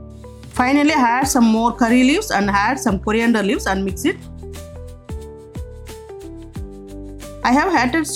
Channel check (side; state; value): both; identical; correlation 1.00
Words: Finally add some more curry leaves and add some coriander leaves and mix it. I have added